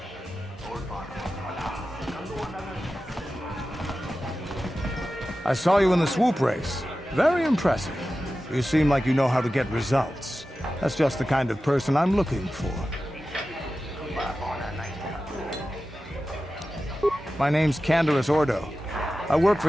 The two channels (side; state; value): both; normal; correlation 0.94